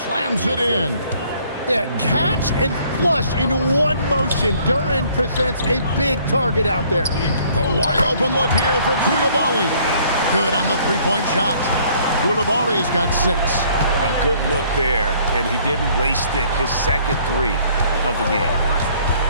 it in. Yeah, catch and flush in one motion. Duren presents a big target out there. The wide open look here for Koulibaly. Good on the three-point shot. Koulibaly's got 6. A good look there, and he didn't waste it. His second 3 of the game.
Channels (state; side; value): inverted; both; correlation -0.60